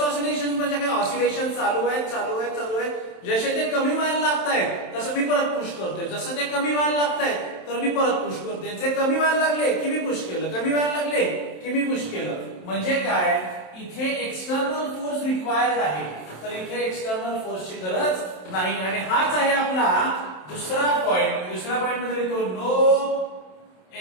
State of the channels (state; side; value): late; right; 27 ms